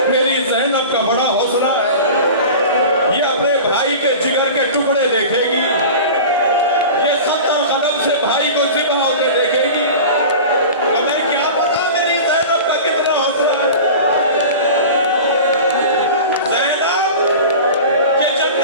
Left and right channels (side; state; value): both; inverted; correlation -0.35